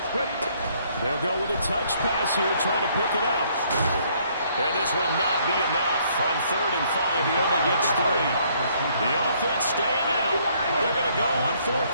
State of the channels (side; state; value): both; inverted; correlation -0.66